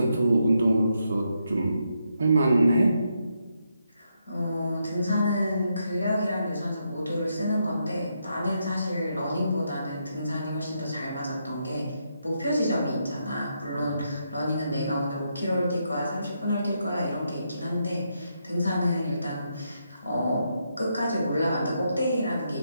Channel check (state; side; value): inverted; both; correlation -0.80